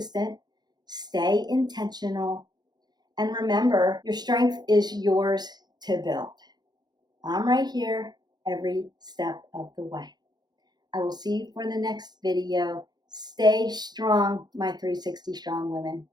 stay intentional, and remember, your strength is yours to build. I'm right here every step of the way. I will see you for the next video. Stay strong, my 360 strong women.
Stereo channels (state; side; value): late; left; 0.20 ms